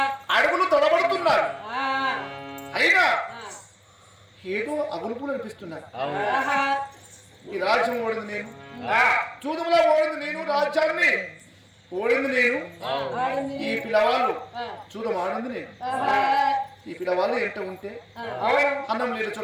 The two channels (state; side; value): identical; both; correlation 1.00